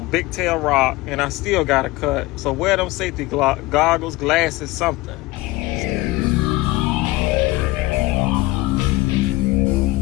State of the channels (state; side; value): quieter; right; 20.0 dB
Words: big tail rock, and I still got a cut. So wear them safety goggles, glasses, something.